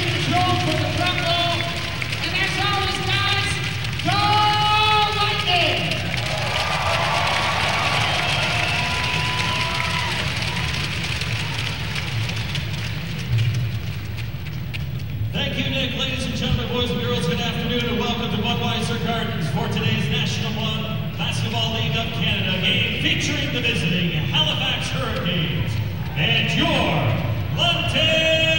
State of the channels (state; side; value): identical; both; correlation 1.00